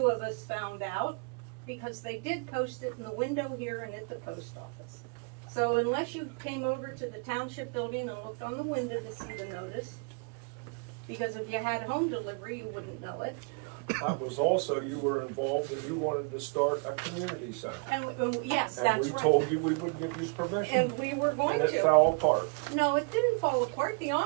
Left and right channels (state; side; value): quieter; left; 34.4 dB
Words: of us found out, because they did post it in the window here and at the post office. So unless you came over to the township building and looked on the window to see the notice, because if you had home delivery, you wouldn't know it. That was also, you were involved and you wanted to start a community center. And yes, and that's we right. told you we would give you permission. And we were going to. And it fell apart. No, it didn't fall apart. The